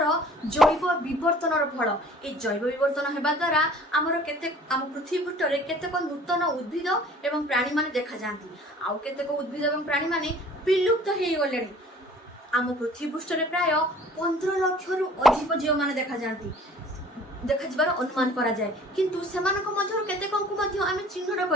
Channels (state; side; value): normal; both; correlation 0.50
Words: जैव विवर्तनर फल ए जैव विवर्तन हेबा द्वारा हमर केते हम पृथ्वी पृष्ठ रे केतेक नूतन उद्भिद एवं प्राणी माने देखा जांती आउ केतेक उद्भिद एवं प्राणी माने विलुप्त हेइ गलेनी हम पृथ्वी पृष्ठ रे प्राय 15 लाख रु अधिक जीव माने देखा जांती देखा जबार अनुमान करा जाए किंतु सेमानक मध्यरु केतेकंकु मध्य आमे चिन्हट